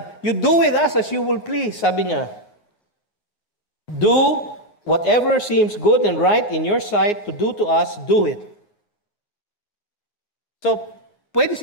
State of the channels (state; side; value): late; right; 9.5 ms